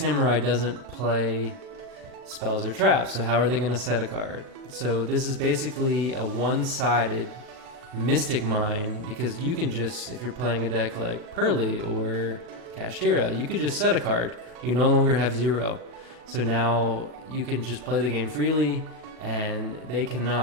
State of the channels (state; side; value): late; left; 39 ms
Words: doesn't play spells or traps, so how are they going to set a card? So this is basically a one-sided Mystic Mine, because you can just, if you're playing a deck like Pearly or Kashtira, you could just set a card. You no longer have 0. So now you can just play the game freely, and they